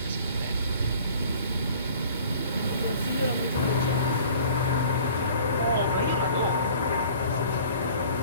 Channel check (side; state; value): both; inverted; correlation -0.50